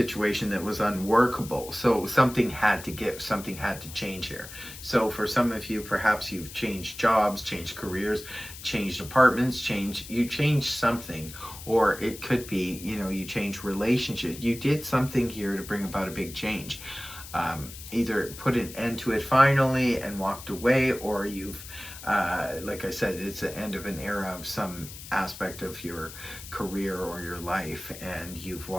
that was unworkable, so something had to give, something had to change here. So for some of you, perhaps you've changed jobs, changed careers, changed apartments, you changed something. Or it could be, you know, you changed relationships. You did something here to bring about a big change. Either put an end to it finally and walked away, or you've like I said, it's the end of an era of some aspect of your career or your life, and you've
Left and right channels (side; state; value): left; noise; hiss, 14 dB below the sound